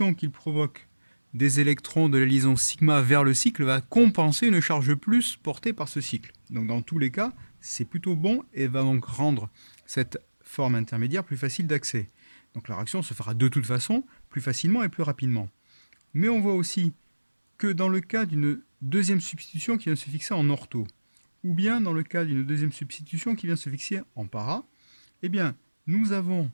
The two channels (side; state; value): both; inverted; correlation -1.00